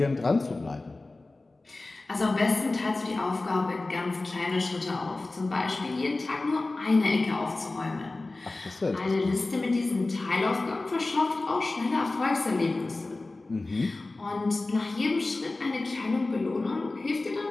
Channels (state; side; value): quieter; right; 3.2 dB